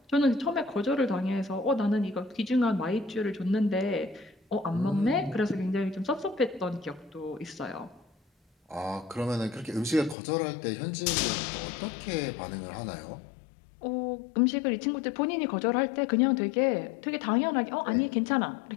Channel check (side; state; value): right; drops out; at 10.2 s